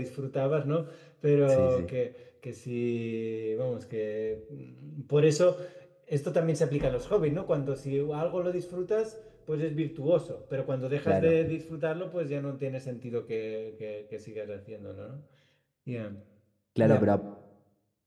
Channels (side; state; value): both; identical; correlation 1.00